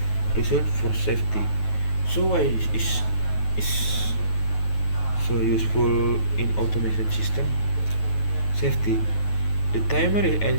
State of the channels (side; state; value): right; late; 9.3 ms